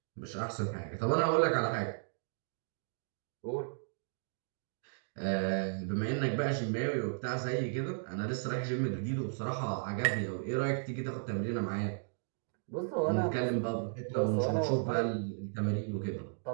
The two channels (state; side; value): silent; left; digital silence